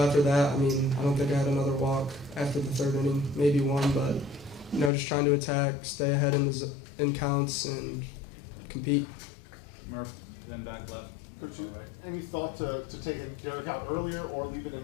after that, I mean, I don't think I had another walk after the 3rd inning, maybe one, but just trying to attack, stay ahead in counts, and compete. Murph, then back left. Coach, any thought to taking Derek out earlier or leaving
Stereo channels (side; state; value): right; drops out; at 4.9 s